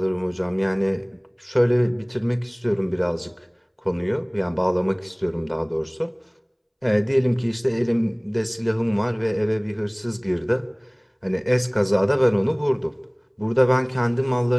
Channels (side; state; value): both; identical; correlation 1.00